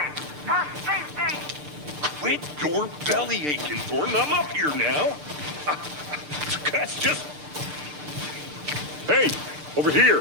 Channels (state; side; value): late; left; 6.7 ms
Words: Quit your belly aching, Thornton. I'm up here now. That's just... Hey, over